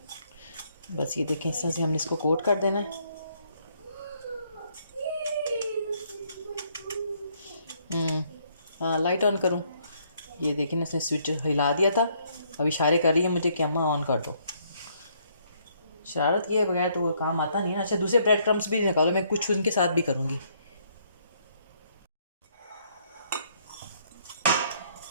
बस ये देखें, इस तरह से हमने इसको कोट कर देना है। हाँ, लाइट ऑन करूँ? ये देखें, इसने स्विच हिला दिया था, अब इशारे कर रही है मुझे कि अम्मा ऑन कर दो। शरारत किए बगैर तो वो काम आता नहीं है। अच्छा, दूसरे ब्रेड क्रम्स भी निकालो, मैं कुछ उनके साथ भी करूँगी।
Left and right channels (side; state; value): both; inverted; correlation -0.69